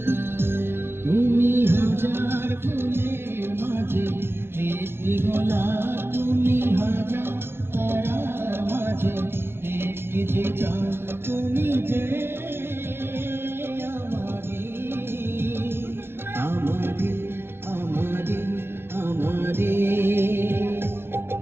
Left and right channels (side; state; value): left; late; 0.11 ms